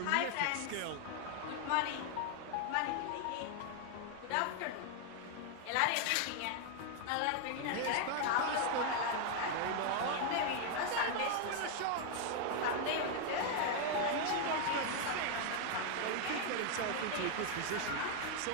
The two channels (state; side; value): different; both; correlation 0.00